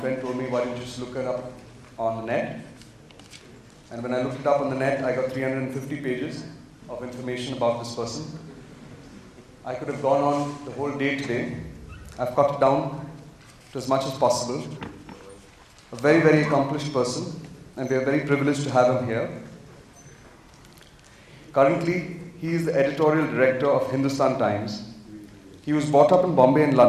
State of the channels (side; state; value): both; identical; correlation 1.00